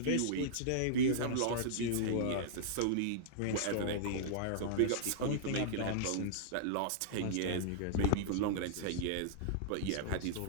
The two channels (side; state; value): both; different; correlation -0.02